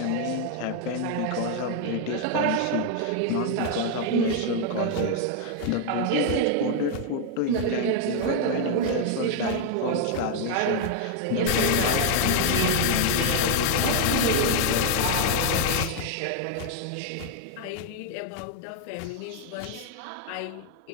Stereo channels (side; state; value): both; different; correlation 0.00